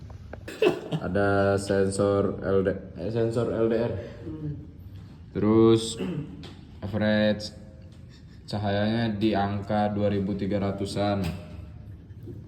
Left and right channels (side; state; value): both; identical; correlation 1.00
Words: Ada sensor LDR. Terus average cahayanya di angka 2300-an.